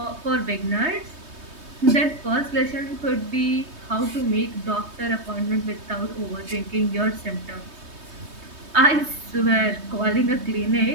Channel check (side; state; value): left; late; 3.2 ms